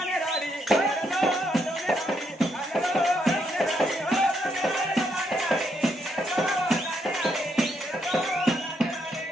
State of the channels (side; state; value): both; normal; correlation 0.76